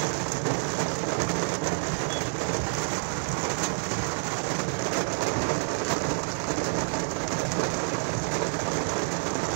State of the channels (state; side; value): silent; left; 59 dB below the other